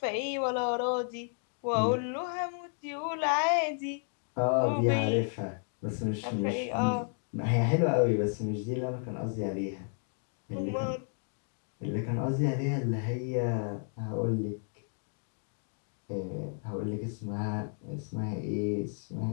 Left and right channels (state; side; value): silent; right; 56 dB below the other